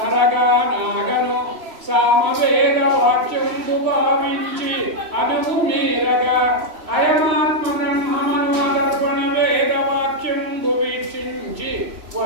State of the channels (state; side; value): late; left; 3.0 ms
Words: సామవేదవాక్యం భావించి అనువు మీరగా అయమాత్మ బ్రహ్మమనుదర్పణ వేదవాక్యం వీక్షించి